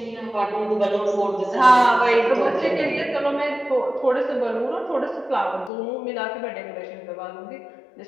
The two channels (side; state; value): right; drops out; at 5.7 s